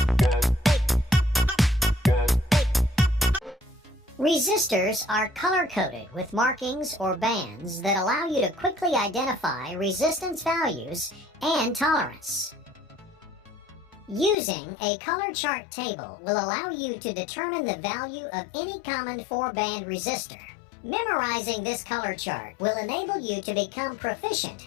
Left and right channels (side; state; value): right; drops out; at 14.4 s